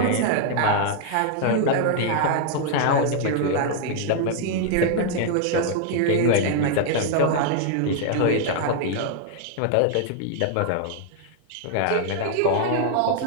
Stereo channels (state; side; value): different; both; correlation 0.00